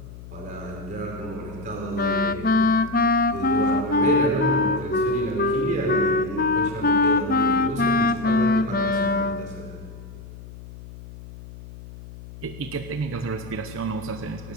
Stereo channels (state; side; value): noise; left; hum, 15 dB below the sound